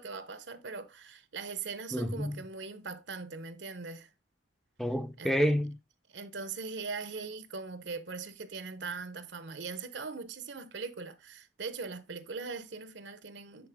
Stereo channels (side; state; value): both; normal; correlation 0.59